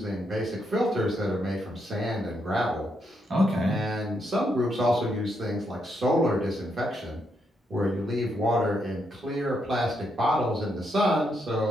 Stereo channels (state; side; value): normal; both; correlation 0.79